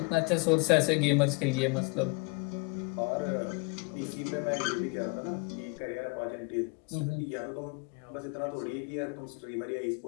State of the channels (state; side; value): quieter; right; 28.9 dB